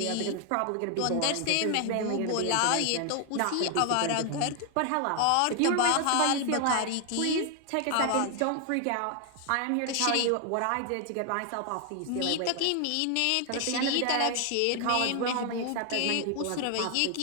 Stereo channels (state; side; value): different; both; correlation 0.00